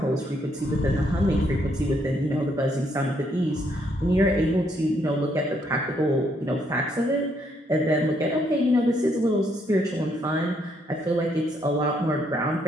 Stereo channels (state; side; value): normal; both; correlation 0.72